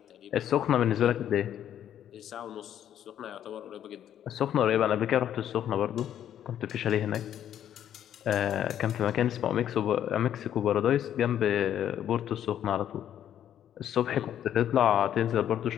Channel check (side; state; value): right; quieter; 10.4 dB